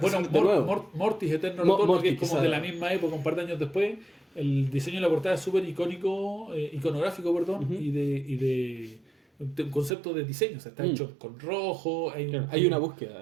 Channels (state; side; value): drops out; left; at 9.9 s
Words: Mortis Eterno Retorno, Mortis, que es como quizá. de la misma época, un par de años después. El diseño de la portada es súper iconográfico, perdón, Ujú. y de un concepto de diseño. O sea, está hecho con rojo, Hay una búsqueda.